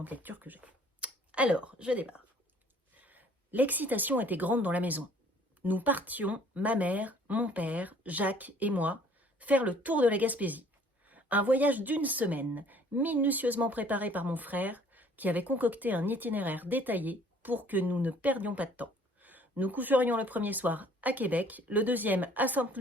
lectures que j'ai. Alors, je démarre. L'excitation était grande dans la maison. Nous partions, ma mère, mon père, Jacques et moi, faire le tour de la Gaspésie. Un voyage d'une semaine, minutieusement préparé par mon frère, qui avait concocté un itinéraire détaillé pour que nous ne perdions pas de temps. Nous coucherions le premier soir à Québec, le deuxième à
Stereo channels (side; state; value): both; normal; correlation 0.56